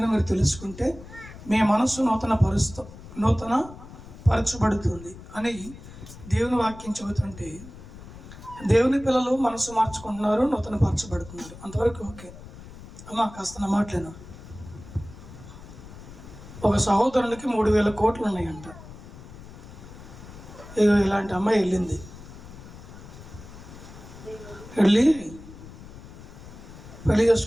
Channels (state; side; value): noise; left; rumble, 16 dB below the sound